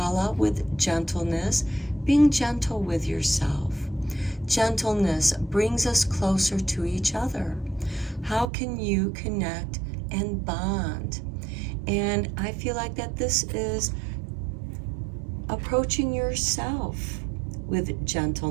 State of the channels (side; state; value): left; drops out; at 8.5 s